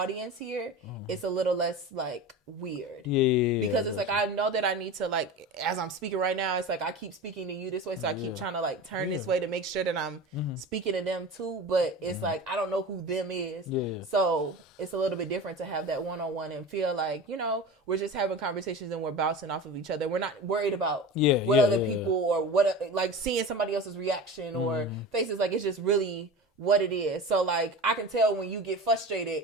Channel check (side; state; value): both; normal; correlation 0.31